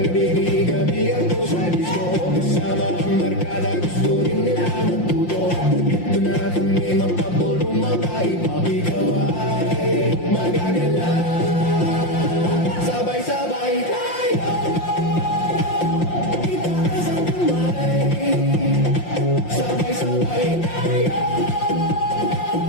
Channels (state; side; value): late; right; 5.7 ms